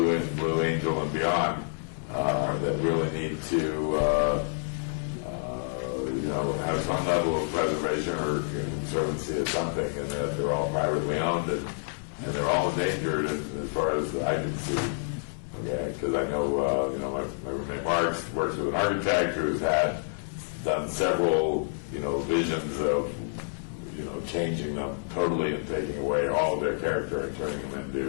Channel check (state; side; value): silent; right; 59 dB below the other